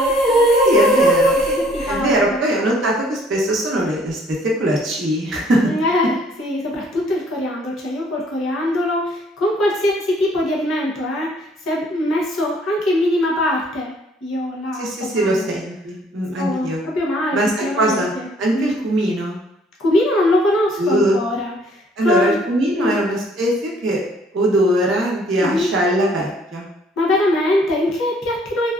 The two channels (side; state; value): both; normal; correlation 0.61